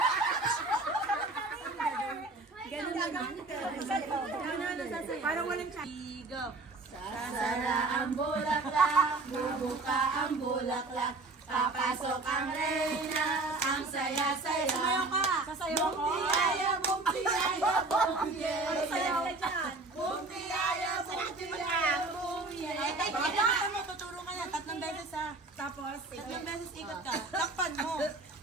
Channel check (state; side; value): quieter; left; 3.2 dB